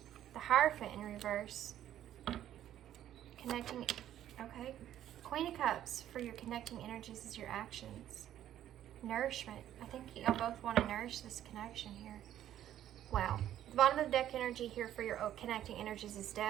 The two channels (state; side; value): quieter; left; 11.7 dB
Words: The Hierophant in reverse. Connecting, okay. Queen of Cups for your connecting energies is your actions. Nourishment. I think y'all both want to nourish this connection here. Wow. The bottom of the deck energy here for your connecting energies is